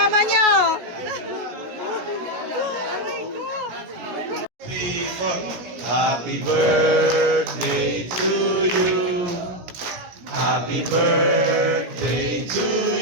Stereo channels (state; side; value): late; left; 17 ms